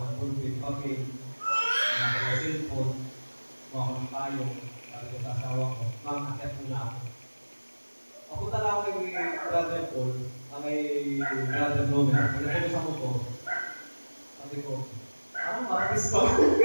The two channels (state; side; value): inverted; both; correlation -1.00